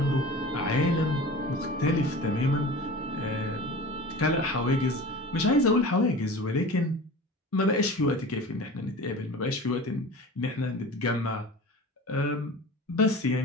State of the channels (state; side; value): normal; both; correlation 0.36